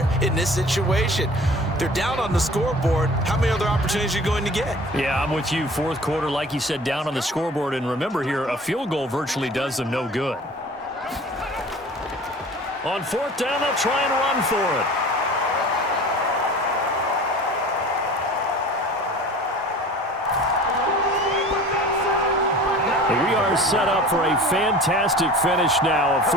in this situation. They're down on the scoreboard. How many other opportunities are you going to get? Yeah, I'm with you. 4th quarter, like you said, down on the scoreboard. And remember here, a field goal virtually does them no good. On 4th down, they'll try and run for it. We are set up for a fantastic finish now. A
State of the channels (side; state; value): both; normal; correlation 0.43